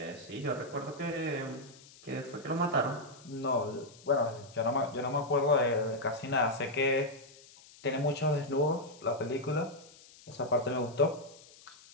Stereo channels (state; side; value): noise; left; hiss, 22 dB below the sound